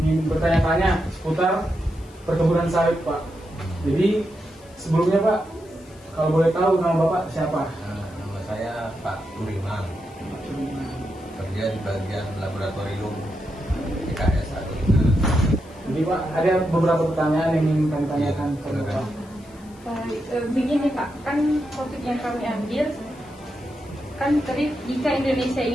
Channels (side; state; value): left; noise; hiss, 27 dB below the sound